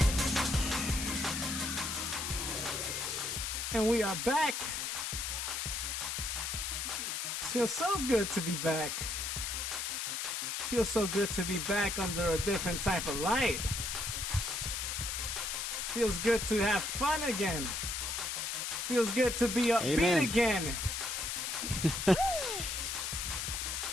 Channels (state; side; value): noise; left; hiss, 2 dB below the sound